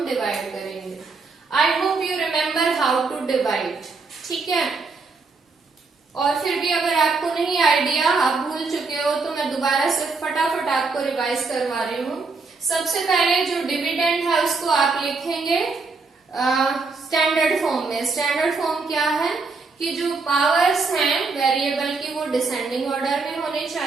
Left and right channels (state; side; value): quieter; left; 4.2 dB